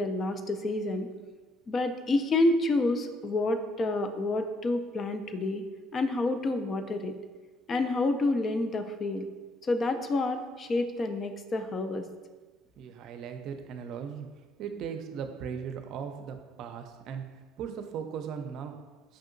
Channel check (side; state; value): both; normal; correlation 0.73